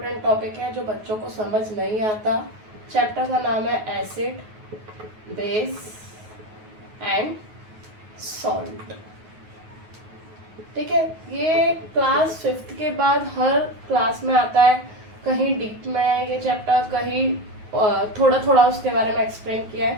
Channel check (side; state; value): left; late; 9.3 ms